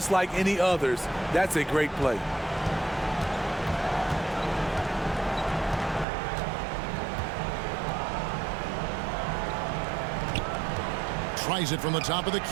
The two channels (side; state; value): left; drops out; at 6.1 s